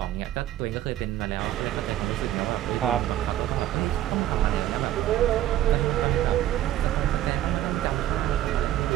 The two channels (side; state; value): left; quieter; 12.9 dB